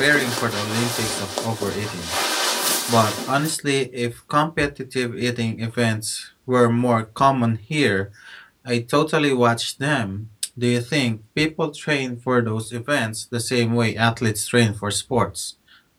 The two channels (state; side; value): identical; both; correlation 1.00